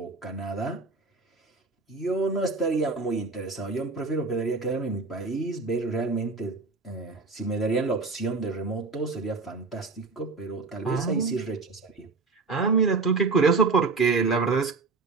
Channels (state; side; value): quieter; left; 4.2 dB